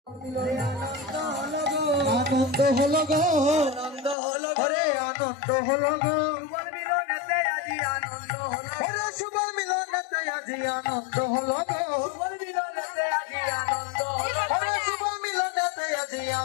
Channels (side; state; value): right; drops out; at 4.2 s